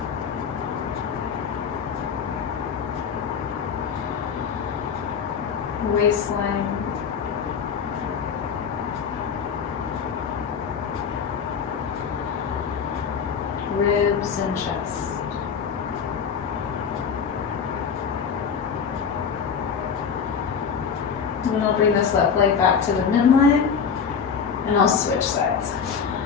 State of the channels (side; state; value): right; quieter; 6.6 dB